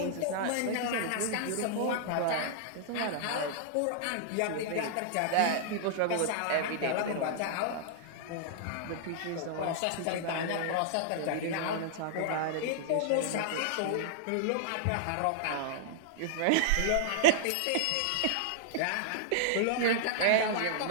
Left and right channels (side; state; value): both; different; correlation -0.01